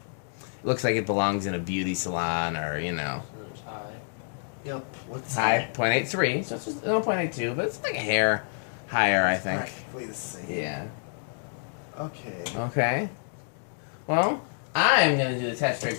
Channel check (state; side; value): silent; right; digital silence